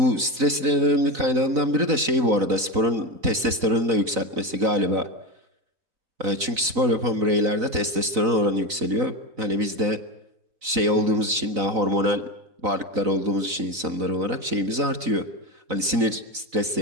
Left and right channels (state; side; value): late; left; 4.0 ms